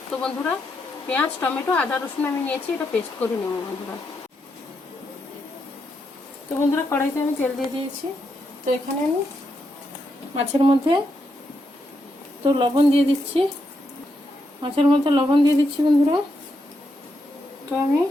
তো বন্ধুরা, পেঁয়াজ, টমেটো, আদা, রসুন আমি নিয়েছি, এটা পেস্ট করে নেব বন্ধুরা। তো বন্ধুরা, কড়াইতে আমি তেল দিয়ে দিয়েছি। তো এখানে আমি মাছের মধ্যে তো লবণ দিয়ে দিচ্ছি। মাছের মধ্যে লবণ দিয়ে দিচ্ছি বন্ধুরা। তো আমি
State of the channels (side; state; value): both; normal; correlation 0.81